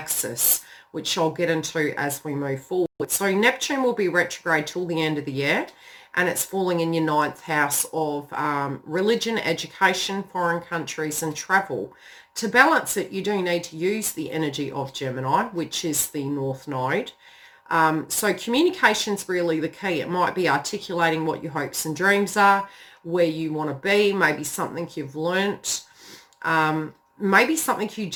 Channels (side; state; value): both; identical; correlation 1.00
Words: which I'll get into as we move forward. So Neptune will be retrograde till the end of the year, and it's falling in your ninth house of religion, education, foreign countries, and travel. To balance it, you do need to use the energy of Gemini, which is the North Node. So communication's really the key. It might be articulating what your hopes and dreams are, where you want to be, maybe something you've learnt, maybe something you